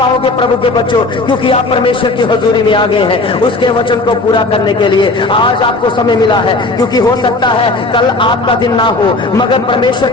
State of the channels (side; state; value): right; quieter; 3.2 dB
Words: प्रभु के बच्चों, क्योंकि आप परमेश्वर की हजूरी में आ गए हैं उसके वचन को पूरा करने के लिए। आज आपको समय मिला है, क्योंकि हो सकता है कल आपका दिन ना हो, मगर परमेश्वर